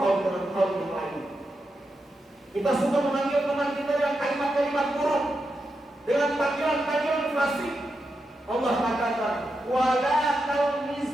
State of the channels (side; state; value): both; normal; correlation 0.87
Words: dengan kaum yang lain. Kita suka memanggil teman kita dengan kalimat-kalimat buruk, dengan panggilan-panggilan fasik. Allah katakan, wala